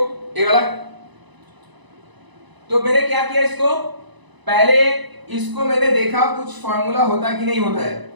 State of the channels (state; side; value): late; left; 1.0 ms